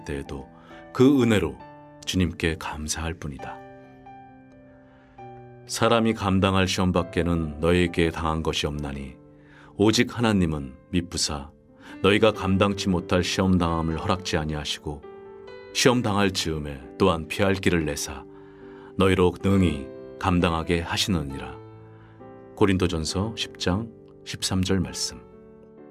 때에도 그 은혜로 주님께 감사할 뿐이다. 사람이 감당할 시험밖에는 너에게 당한 것이 없나니 오직 하나님은 미쁘사 너희가 감당치 못할 시험당함을 허락지 아니하시고 시험당할 즈음에 또한 피할 길을 내사 너희로 능히 감당하게 하시느니라. 고린도전서 10장 13절 말씀.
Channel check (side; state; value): both; identical; correlation 1.00